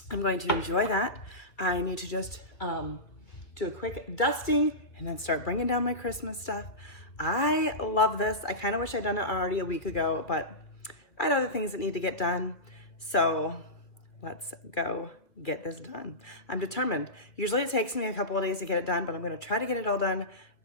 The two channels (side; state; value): right; late; 2.6 ms